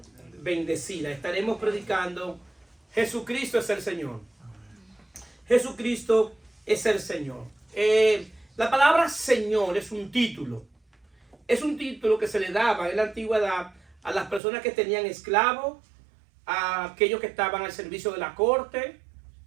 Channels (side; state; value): left; drops out; at 14.4 s